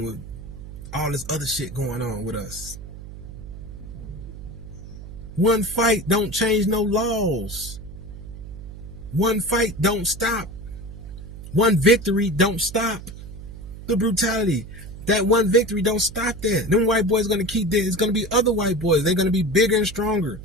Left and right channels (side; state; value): right; noise; hum, 13 dB below the sound